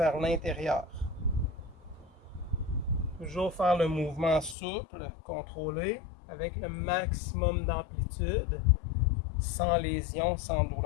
l'intérieur. Toujours faire le mouvement souple, contrôlé, avec le maximum d'amplitude, sans lésion, sans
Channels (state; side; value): drops out; right; at 4.5 s